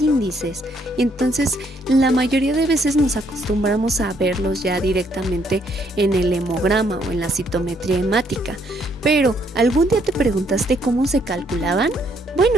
Entonces, la mayoría de veces nos acostumbramos a verlos ya directamente en el hemograma o en la citometría hemática. Pero, ¿algún día te preguntaste cómo se calculaban?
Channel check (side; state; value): both; normal; correlation 0.70